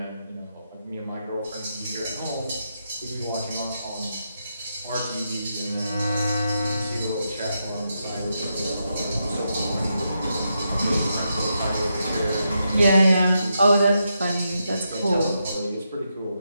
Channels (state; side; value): inverted; both; correlation -0.84